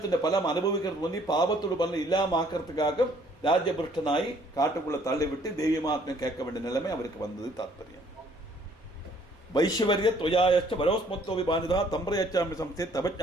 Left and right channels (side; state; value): both; normal; correlation 0.61